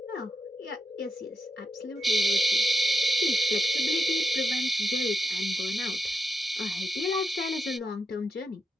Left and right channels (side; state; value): both; normal; correlation 0.86